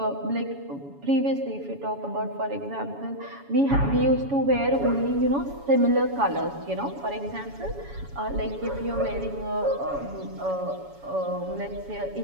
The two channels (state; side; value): late; left; 7.1 ms